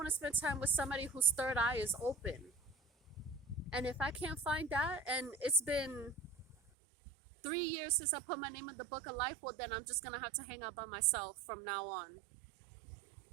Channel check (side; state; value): left; drops out; at 6.6 s